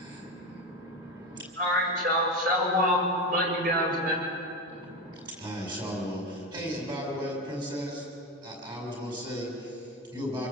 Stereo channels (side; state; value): both; normal; correlation 0.18